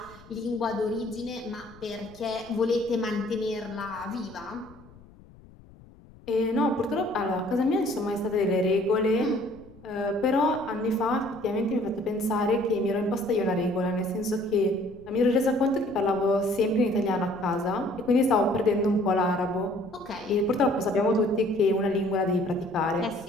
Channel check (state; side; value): noise; left; rumble, 23 dB below the sound